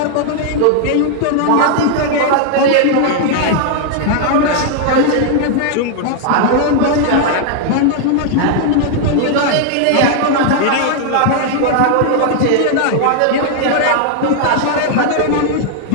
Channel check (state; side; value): different; both; correlation 0.00